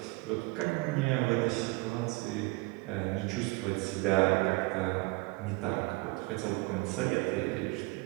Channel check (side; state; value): left; quieter; 24.3 dB